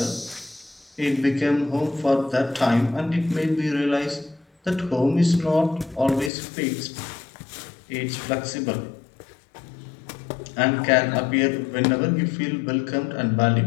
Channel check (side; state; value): right; drops out; at 6.3 s